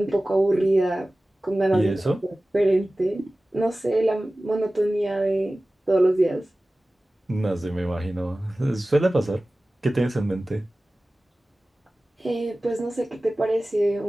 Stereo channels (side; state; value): both; normal; correlation 0.97